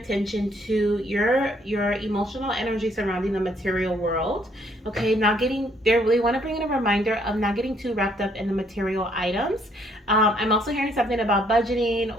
to your emotional energy surrounding the material world. Okay, they want to bring in a reminder of not getting too wrapped up in the material items. I'm also hearing something about budgeting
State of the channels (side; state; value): both; normal; correlation 0.67